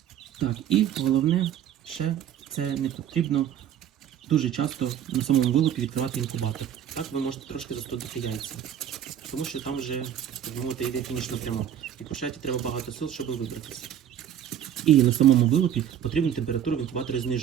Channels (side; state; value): left; quieter; 9.9 dB